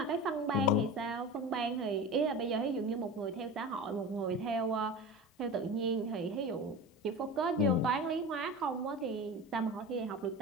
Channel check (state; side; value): normal; both; correlation 0.31